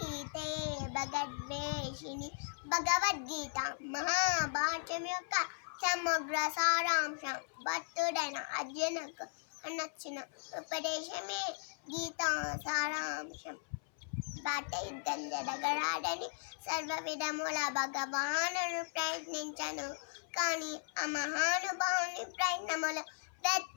భగద్వేషిణి. భగవద్గీత మహాభారతం యొక్క సమగ్ర సారాంశం. భక్తుడైన అర్జునకు నచ్చిన ఉపదేశమే గీతా సారాంశం. బాట యుద్ధం జరగరాడని సర్వ విధముల భగవానుడు ప్రయత్నించను, కానీ ఆ మహానుభావుని ప్రయత్నములు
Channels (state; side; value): silent; right; 53 dB below the other